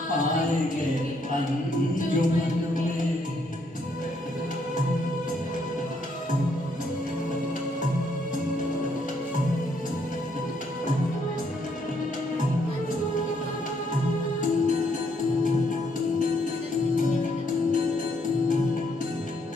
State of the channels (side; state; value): both; normal; correlation 0.72